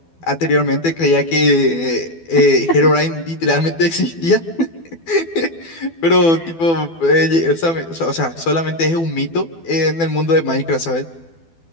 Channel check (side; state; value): right; late; 12 ms